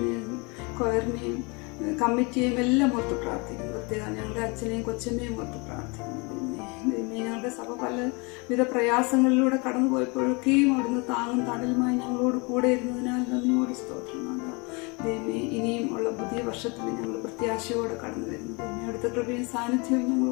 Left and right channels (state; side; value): quieter; right; 29.3 dB